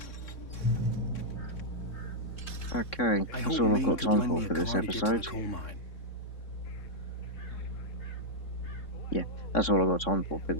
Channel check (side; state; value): right; late; 3.6 ms